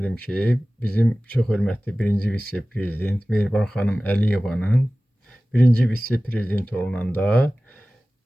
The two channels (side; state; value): both; normal; correlation 0.97